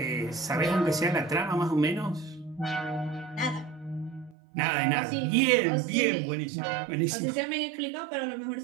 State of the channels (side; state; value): left; drops out; at 4.4 s